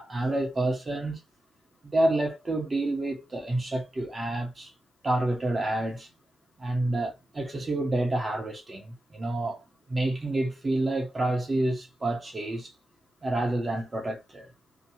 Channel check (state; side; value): normal; both; correlation 0.92